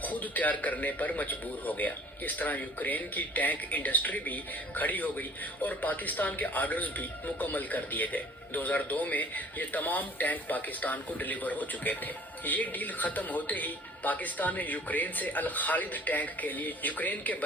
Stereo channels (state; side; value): normal; both; correlation 0.51